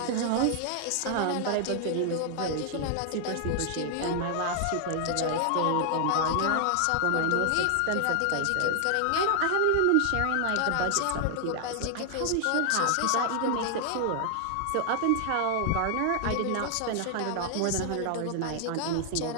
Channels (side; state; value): both; different; correlation 0.00